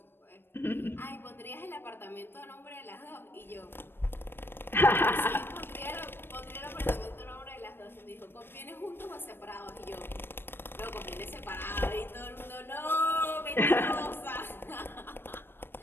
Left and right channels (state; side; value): late; right; 0.10 ms